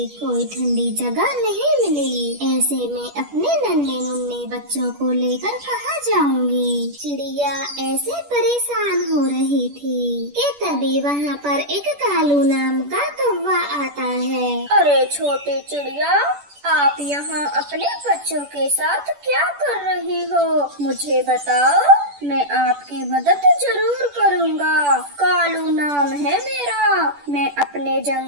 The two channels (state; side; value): late; left; 10 ms